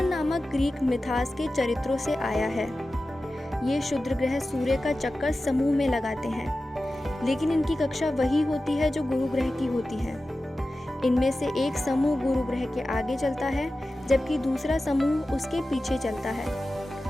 नामक ग्रीक मिथास के चरित्रों से आया है। ये क्षुद्र ग्रह सूर्य का चक्कर समूह में लगाते हैं, लेकिन इनकी कक्षा वही होती है जो गुरु ग्रह की होती है। इनमें से एक समूह गुरु ग्रह के आगे चलता है जबकि दूसरा समूह उसके पीछे चलता है।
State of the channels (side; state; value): both; normal; correlation 0.94